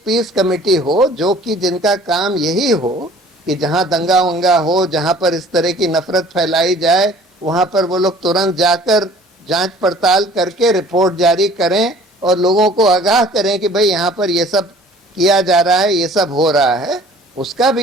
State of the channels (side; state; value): both; normal; correlation 0.51